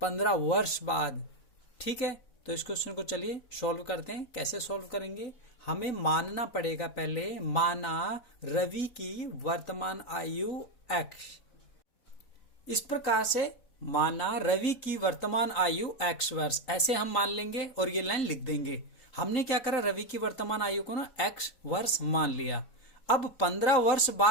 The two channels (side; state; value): right; late; 4.1 ms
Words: वर्ष बाद। ठीक है, तो इस क्वेश्चन को चलिए सॉल्व करते हैं। कैसे सॉल्व करेंगे, हमें मानना पड़ेगा पहले, माना रवि की वर्तमान आयु x। इस प्रकार से माना रवि की वर्तमान आयु x वर्ष, ऐसे हम मान लेंगे और ये लाइन लिख देंगे। हमने क्या करा, रवि की वर्तमान आयु को ना x वर्ष मान लिया। अब 15 वर्ष